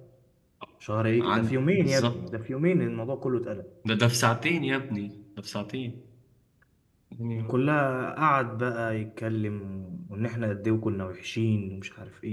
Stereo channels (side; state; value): both; identical; correlation 1.00